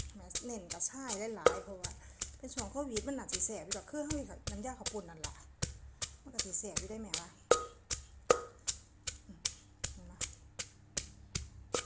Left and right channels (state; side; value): identical; both; correlation 1.00